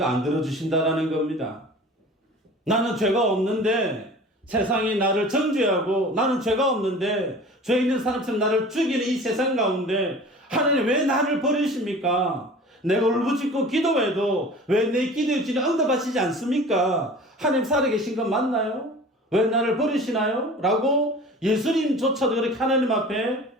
안 들어주신다라는 겁니다. 나는 죄가 없는데 세상이 나를 정죄하고 나는 죄가 없는데 죄 있는 사람처럼 나를 죽이는 이 세상 가운데 하나님 왜 나를 버리십니까? 내가 울부짖고 기도해도 왜 내 기도에 주님 응답하시지 않습니까? 하나님 살아계신 건 맞나요? 왜 나를 버리시나요? 라고 예수님조차도 그렇게 하나님 앞에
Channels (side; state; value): both; normal; correlation 0.41